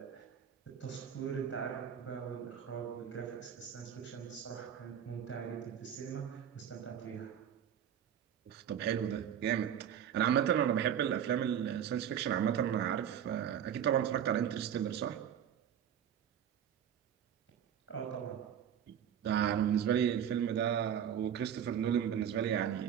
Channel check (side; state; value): left; quieter; 9.2 dB